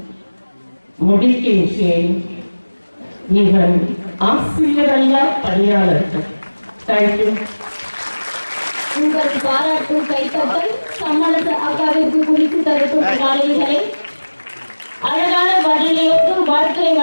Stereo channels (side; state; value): both; inverted; correlation -1.00